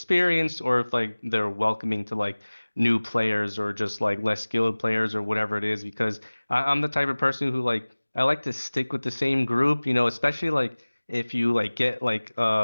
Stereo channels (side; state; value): both; inverted; correlation -1.00